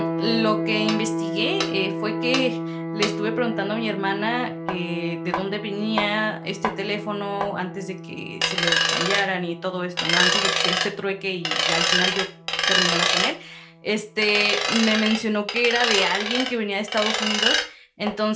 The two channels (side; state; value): both; identical; correlation 1.00